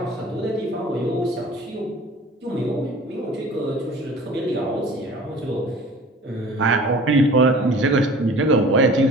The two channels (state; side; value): normal; both; correlation 0.45